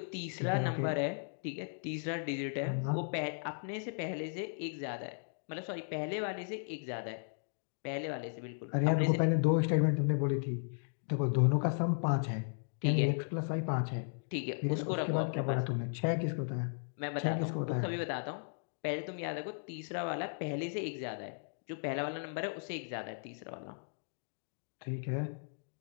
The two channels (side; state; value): right; silent; digital silence